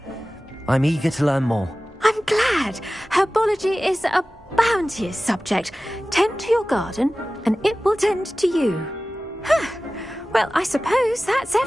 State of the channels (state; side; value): normal; both; correlation 0.96